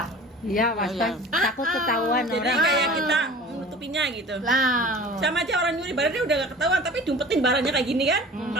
iya iya. takut ketahuan Jadi orang kayak kita menutupinya gitu. Lah, Sama aja orang nyuri barangnya udah gak ketahuan, tapi diumpetin barangnya kayak gini kan?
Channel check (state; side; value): normal; both; correlation 0.42